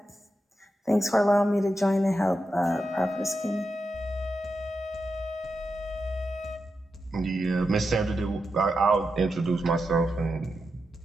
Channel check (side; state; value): both; normal; correlation 0.88